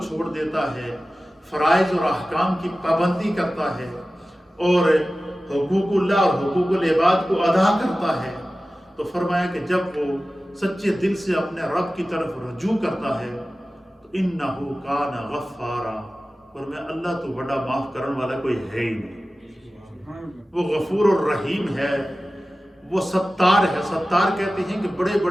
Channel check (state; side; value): normal; both; correlation 0.96